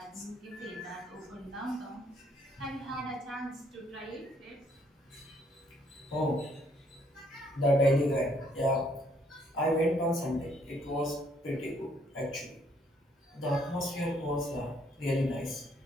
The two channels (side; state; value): both; normal; correlation 0.68